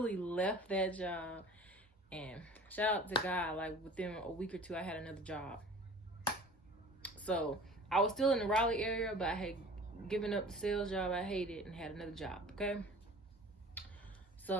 left that job, and shout out to God, like within a week or two, I had another job. So I was still in the Raleigh area, but I had given up the sales job I hated and had another job, okay?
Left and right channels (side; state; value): both; normal; correlation 0.44